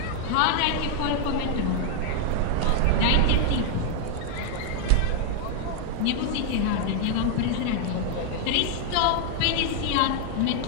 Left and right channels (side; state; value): both; different; correlation 0.00